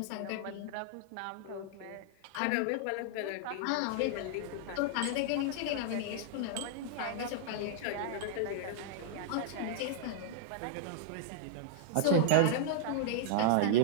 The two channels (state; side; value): different; both; correlation -0.01